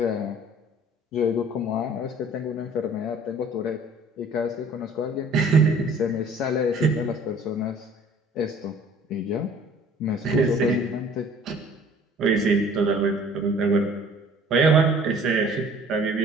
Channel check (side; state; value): both; normal; correlation 0.52